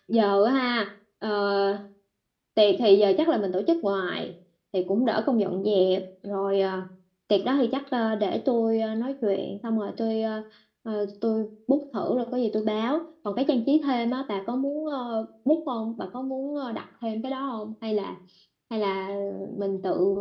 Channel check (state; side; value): identical; both; correlation 1.00